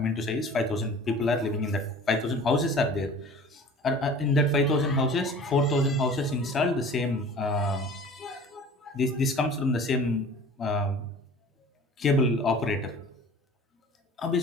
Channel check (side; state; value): both; normal; correlation 0.44